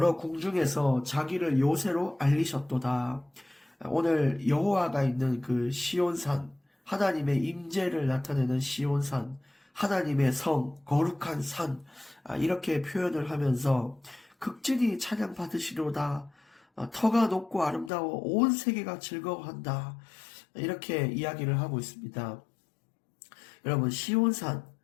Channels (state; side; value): drops out; right; at 17.9 s